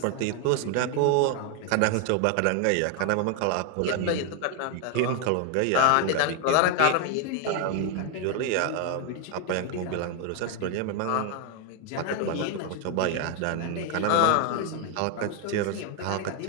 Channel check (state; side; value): different; both; correlation 0.01